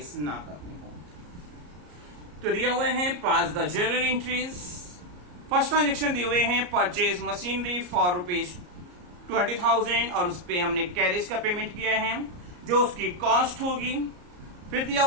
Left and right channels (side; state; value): left; late; 34 ms